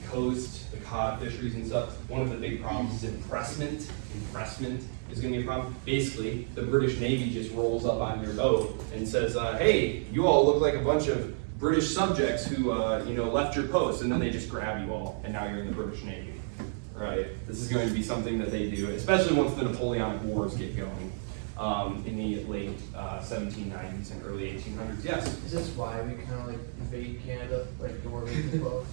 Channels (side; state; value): left; silent; digital silence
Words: coast, the cod fisheries and stuff. One of the big problems is impressment. Impressment is going to be a problem. Basically, the British Navy just rolls up on your boat and says, hey, you all look like a bunch of British subjects who left your post, and then they just grab you all, and now you're in the British Navy, right? This is going to be something that they do, especially once the Napoleonic Wars get going in the late 1790s and early 1800s. Yes? Is this why we kind of like invade Canada, like the War of 1812?